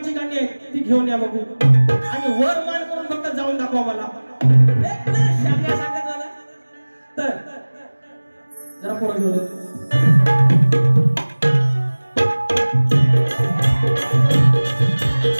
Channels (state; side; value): inverted; both; correlation -1.00